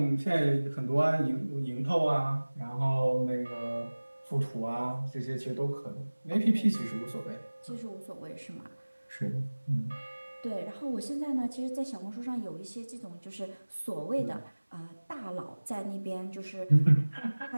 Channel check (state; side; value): inverted; both; correlation -1.00